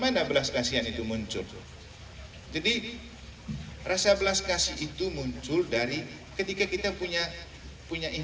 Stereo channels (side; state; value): both; identical; correlation 1.00